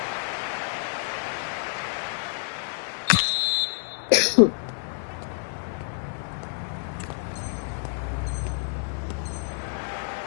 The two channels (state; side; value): silent; right; digital silence